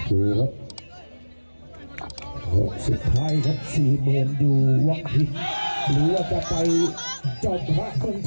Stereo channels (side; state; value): both; inverted; correlation -1.00